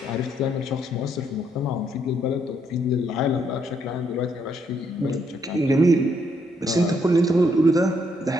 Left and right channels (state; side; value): normal; both; correlation 0.73